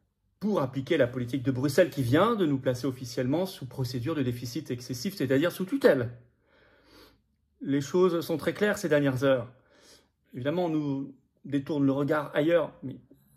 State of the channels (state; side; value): identical; both; correlation 1.00